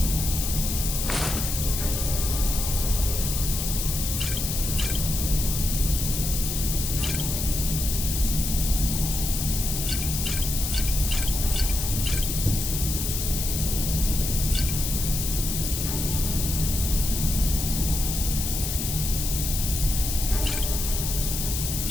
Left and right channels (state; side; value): noise; left; hiss, 3 dB below the sound